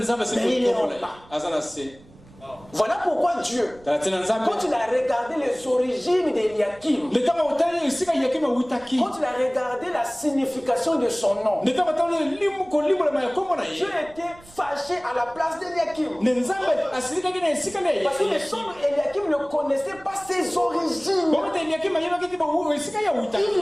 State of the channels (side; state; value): right; noise; rumble, 24 dB below the sound